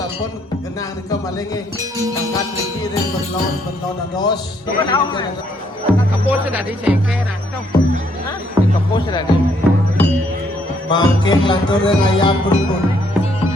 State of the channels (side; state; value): both; normal; correlation 0.69